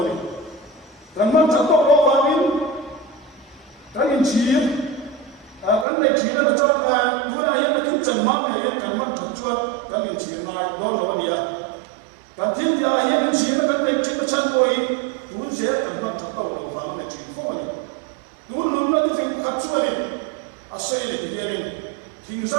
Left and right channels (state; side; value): drops out; left; at 5.9 s